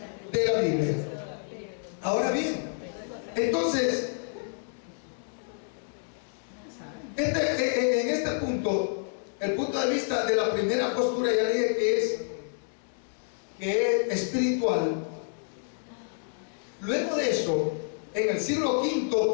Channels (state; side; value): silent; right; digital silence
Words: de la Biblia. Ahora bien, entonces en este punto, el punto de vista de la primera postura, ya dije que es espiritual. Luego de eso, en el siglo